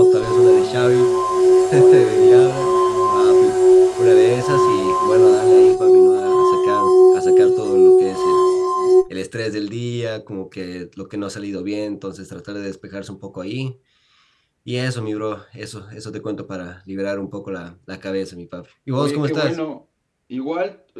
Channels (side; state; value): both; identical; correlation 1.00